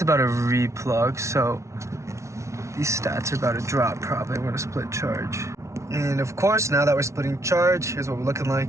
about to replug. So these stats are about to drop probably. We're gonna split charge. And of course, now that we're splitting charge, here's what we're looking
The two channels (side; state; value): left; late; 0.14 ms